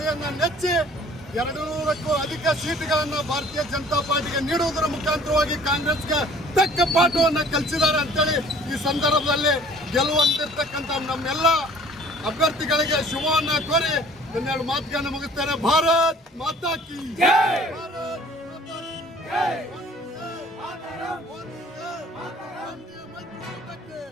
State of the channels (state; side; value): normal; both; correlation 0.52